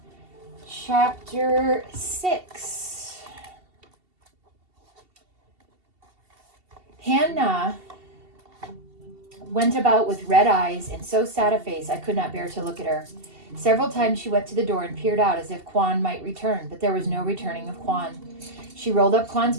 chapter 6. Hannah went about with red eyes and so sad a face I could not bear to look at her. Several times she went to the door and peered out as if Kwan might return, but there was no returning of Kwan. She rolled up Kwan's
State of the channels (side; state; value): left; late; 2.7 ms